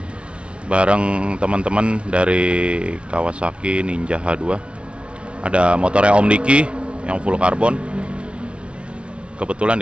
Bareng teman-teman dari Kawasaki Ninja H2. Ada motornya Om Diki yang full karbon. Kebetulan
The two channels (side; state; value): left; late; 0.059 ms